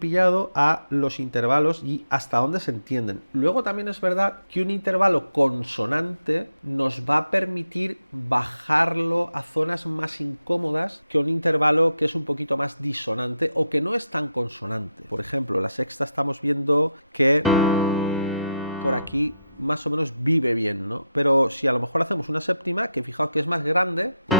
a los intervalos y hasta dónde se entienden. Luego también es verdad que un intervalo consonante nos va a permitir bajarlo a zonas más incómodas que un intervalo que es un poquito más disonante o que no es tan consonante. Por ejemplo, la sexta estamos viendo que por aquí más o menos vive bien, ¿no? Pero si a lo mejor hacemos una séptima, que fijaos que es más grande,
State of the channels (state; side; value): inverted; both; correlation -0.85